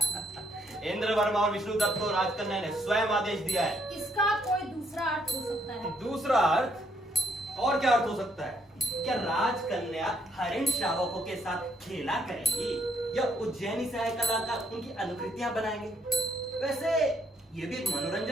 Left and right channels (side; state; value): both; normal; correlation 0.71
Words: इंद्र वर्मा और विष्णु दत्त को राजकन्या ने स्वयं आदेश दिया है। इसका कोई दूसरा अर्थ हो सकता है। दूसरा अर्थ? और क्या अर्थ हो सकता है? क्या राजकन्या हरिण शावकों के साथ खेला करेंगी या उज्जैनी से आए कलाकार उनकी अनुकृतियां बनाएंगे? वैसे ये भी एक